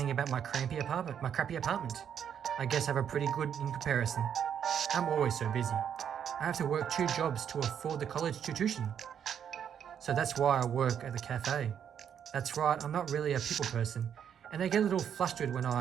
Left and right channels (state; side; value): quieter; left; 8.5 dB